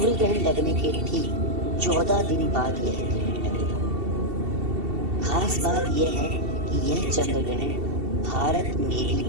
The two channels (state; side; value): late; left; 2.7 ms